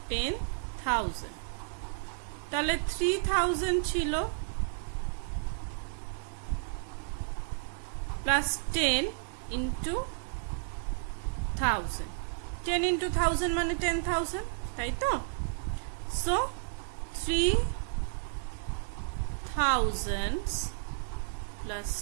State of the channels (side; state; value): left; silent; 56 dB below the other